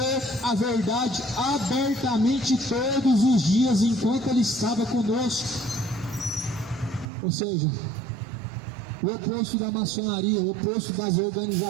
a verdade abertamente todos os dias enquanto Ele estava conosco. Ou seja, o oposto da maçonaria, o oposto das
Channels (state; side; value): drops out; left; at 7.1 s